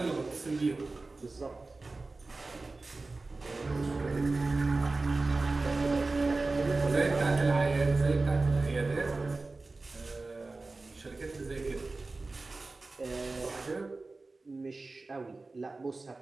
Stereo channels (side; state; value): left; quieter; 3.5 dB